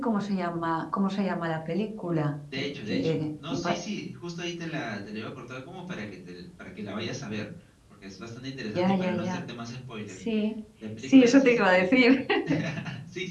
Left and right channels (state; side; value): identical; both; correlation 1.00